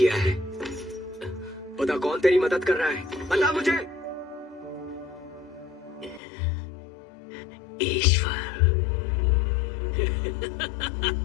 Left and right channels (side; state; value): right; drops out; at 6.2 s